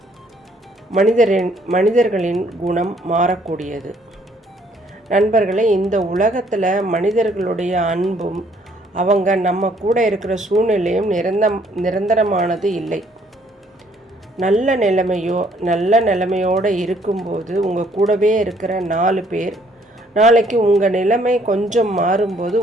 மனிதர்களின் குணம் மாறக்கூடியது. நண்பர்களே, இந்த உலகத்தில் மனிதர்களுடைய அன்பும் அவங்க நம்ம கூட இருக்கிற சூழ்நிலையும் நிரந்தரமானது இல்லை. நல்ல நிலைமையோடு இருக்கும்போது உங்கள் கூடவே இருக்கிற 4 பேர் நாளைக்கு உங்கள் நிலைமை கொஞ்சம் மாறும்போது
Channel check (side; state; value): both; normal; correlation 0.64